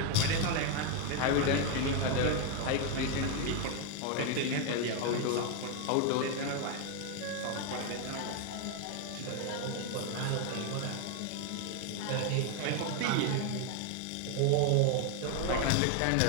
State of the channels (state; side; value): different; both; correlation 0.01